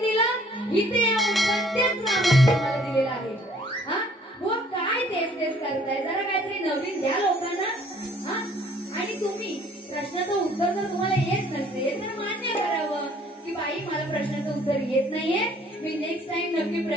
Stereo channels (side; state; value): both; normal; correlation 0.58